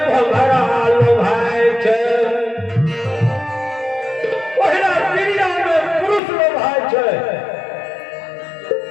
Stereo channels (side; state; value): right; drops out; at 6.2 s